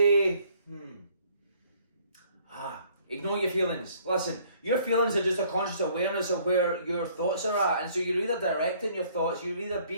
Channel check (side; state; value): both; inverted; correlation -0.60